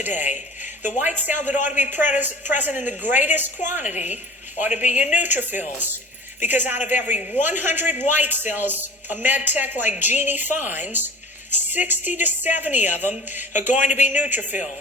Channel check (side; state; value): both; normal; correlation 0.39